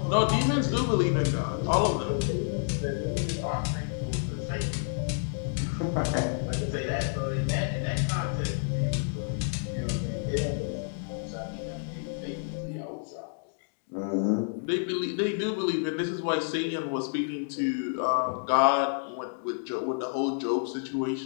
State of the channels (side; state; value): right; silent; digital silence